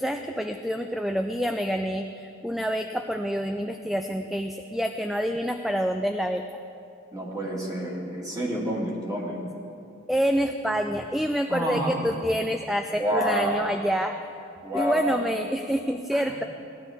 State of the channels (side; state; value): both; normal; correlation 0.74